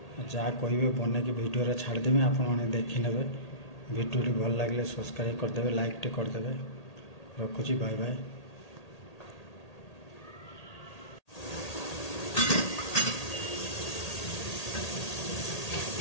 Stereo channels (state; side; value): late; right; 1.8 ms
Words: जहाँ कहे बन कि भिडियो छाड़देवी आपण देखने भिडियो भल लगे सब्सक्राइब करदे लाइक टे करदे रखुची बाय बाय।